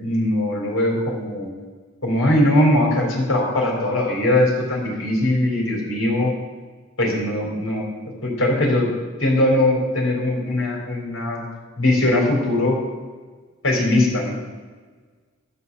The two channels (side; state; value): both; normal; correlation 0.48